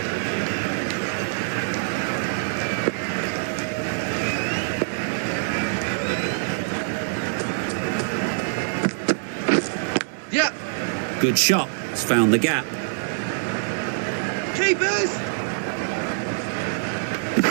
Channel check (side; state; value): left; silent; digital silence